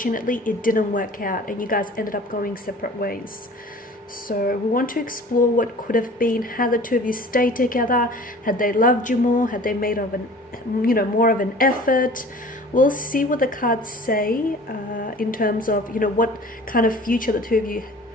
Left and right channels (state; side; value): normal; both; correlation 0.45